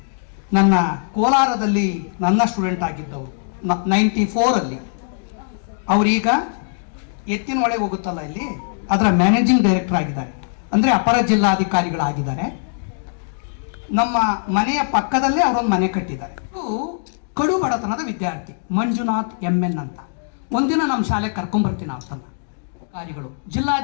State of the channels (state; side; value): silent; right; digital silence